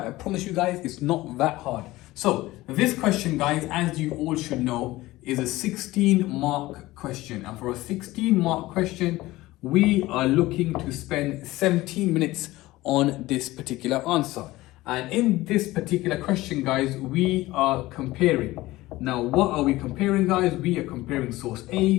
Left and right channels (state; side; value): quieter; right; 18.2 dB